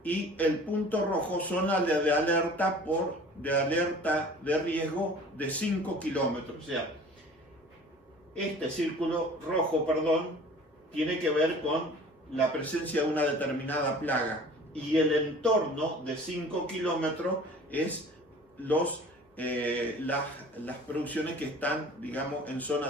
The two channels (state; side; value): normal; both; correlation 0.45